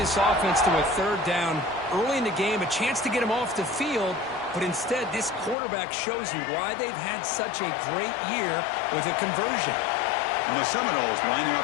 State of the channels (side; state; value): right; drops out; at 5.6 s